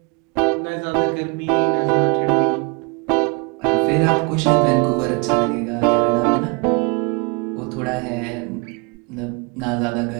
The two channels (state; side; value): quieter; left; 31.2 dB